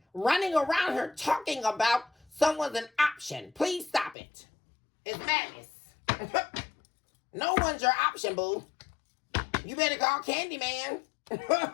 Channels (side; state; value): right; drops out; at 4.2 s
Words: Running around here talking about someone's an option. Please stop it. It's madness. No one's your option, boo. You better call Candyman.